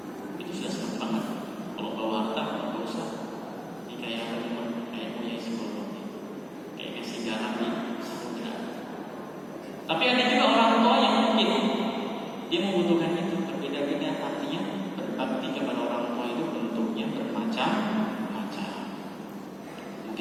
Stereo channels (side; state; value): both; identical; correlation 1.00